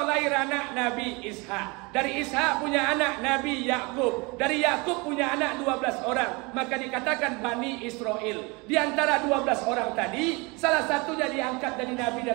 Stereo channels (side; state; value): left; quieter; 27.3 dB